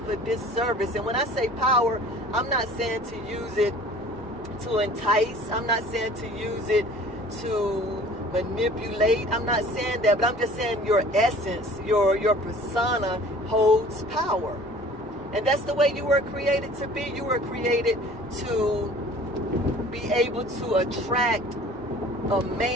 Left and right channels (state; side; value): normal; both; correlation 0.48